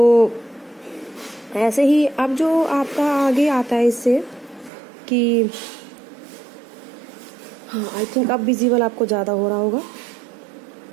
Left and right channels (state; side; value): drops out; left; at 4.7 s